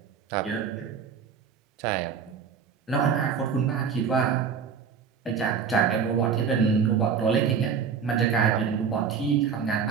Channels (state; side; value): quieter; left; 6.6 dB